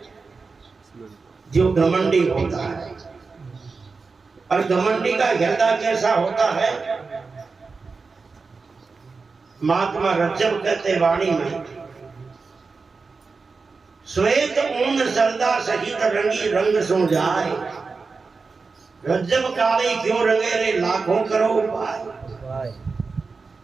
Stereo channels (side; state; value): left; quieter; 4.4 dB